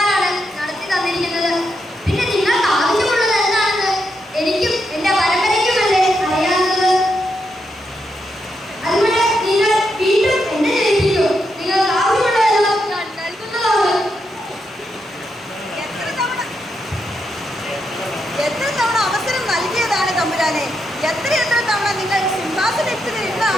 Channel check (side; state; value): both; normal; correlation 0.82